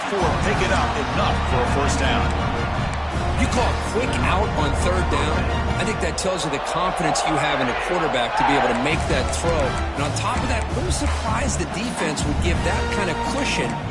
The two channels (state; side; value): identical; both; correlation 1.00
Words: picking up enough for a first down. You call a quick out on third down, I think that tells you the confidence you have in a quarterback to be able to make that throw. And on top of that, a little surprised the defense would give that kind of cushion